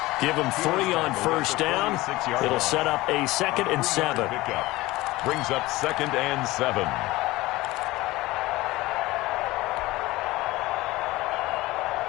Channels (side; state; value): right; quieter; 19.2 dB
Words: Give him 3 on first down. It'll set up a 2nd and 7. Brings up 2nd and 7.